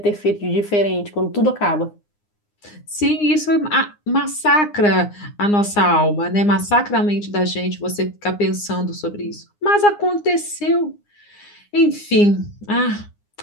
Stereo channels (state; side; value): late; right; 9.7 ms